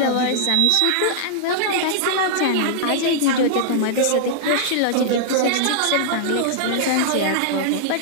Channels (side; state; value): both; different; correlation -0.01